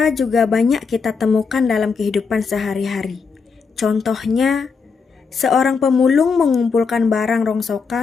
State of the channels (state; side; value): quieter; right; 5.3 dB